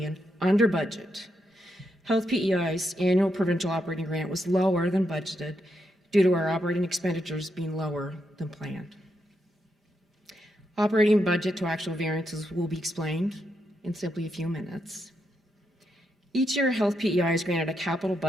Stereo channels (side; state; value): both; normal; correlation 0.81